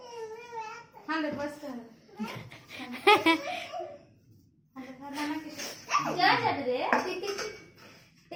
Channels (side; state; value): both; identical; correlation 1.00